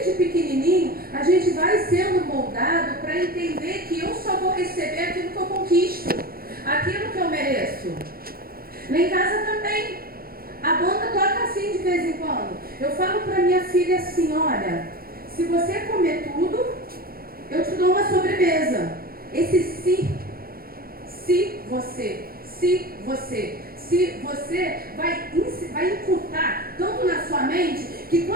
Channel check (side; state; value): left; late; 0.43 ms